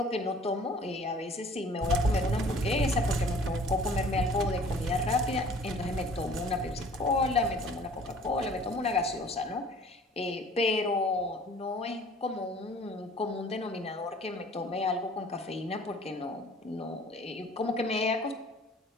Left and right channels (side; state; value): both; normal; correlation 0.51